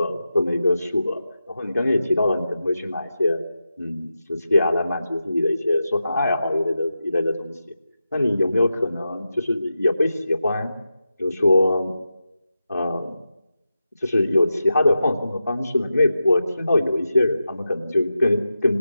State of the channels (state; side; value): inverted; both; correlation -0.91